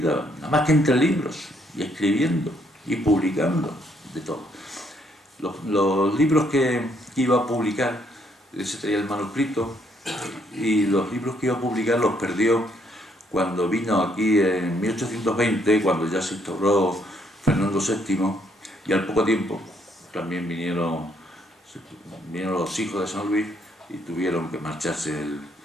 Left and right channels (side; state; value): both; normal; correlation 0.70